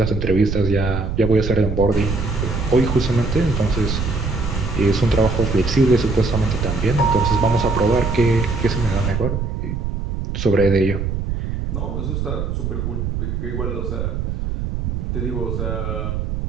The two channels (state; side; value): noise; right; rumble, 2 dB below the sound